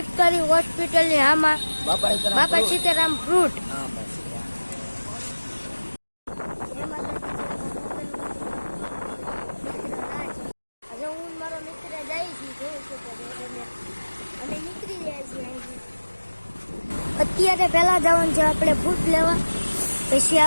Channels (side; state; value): both; inverted; correlation -1.00